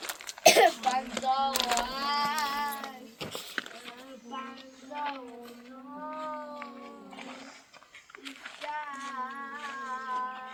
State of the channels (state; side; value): identical; both; correlation 1.00